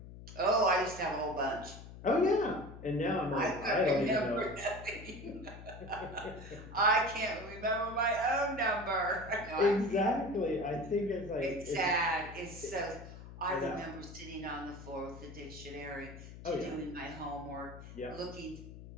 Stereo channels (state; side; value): noise; left; hum, 14 dB below the sound